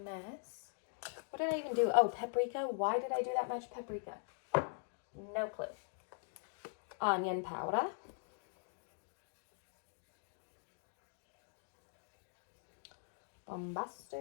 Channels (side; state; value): right; silent; digital silence